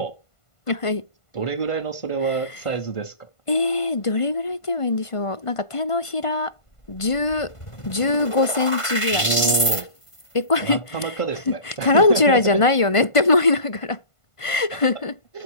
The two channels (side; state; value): right; late; 1.5 ms